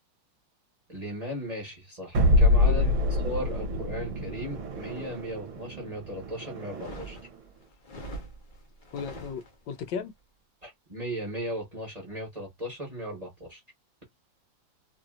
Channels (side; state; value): both; normal; correlation -0.13